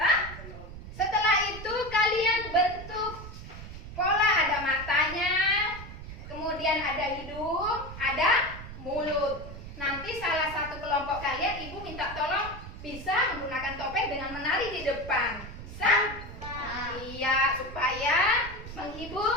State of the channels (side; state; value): right; noise; rumble, 12 dB below the sound